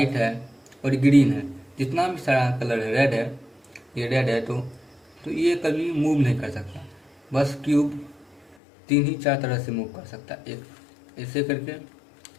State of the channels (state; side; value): drops out; right; at 8.6 s